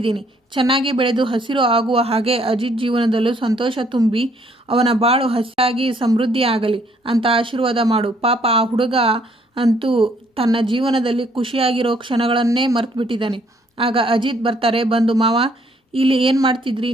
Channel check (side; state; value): both; normal; correlation 0.66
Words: ಚೆನ್ನಾಗಿ ಬೆಳೆದು ಹಸಿರು ಆಗುವ ಹಾಗೆ ಅಜಿತ್ ಜೀವನದಲ್ಲೂ ಸಂತೋಷ ತುಂಬಿ ಅವನ ಬಾಳು ಹಸಿರಾಗಿ ಸಮೃದ್ಧಿ ಆಗಲಿ ಅಂತ ಆಶೀರ್ವಾದ ಮಾಡು. ಪಾಪ ಆ ಹುಡುಗ ಅಂತೂ ತನ್ನ ಜೀವನದಲ್ಲಿ ಖುಷಿಯಾಗಿರೋ ಕ್ಷಣಗಳನ್ನೇ ಮರ್ತು ಬಿಟ್ಟಿದ್ದಾನೆ. ಆಗ ಅಜಿತ್ ಬರ್ತಾರೆ. ಬಂದು, ಮಾವ ಇಲ್ಲಿ ಏನು ಮಾಡ್ತಿದ್ರಿ?